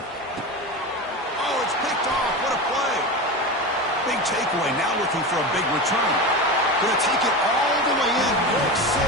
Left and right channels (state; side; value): normal; both; correlation 0.24